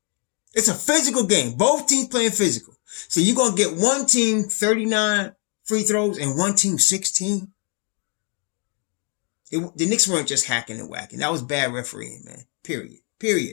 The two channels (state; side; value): quieter; right; 34.9 dB